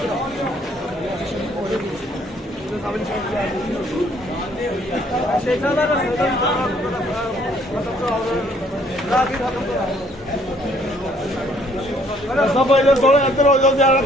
सब थोड़ा इधर हो जाओ ज्यादा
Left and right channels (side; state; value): both; normal; correlation 0.63